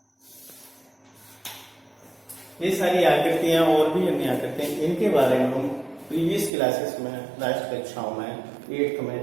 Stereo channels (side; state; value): left; drops out; at 6.5 s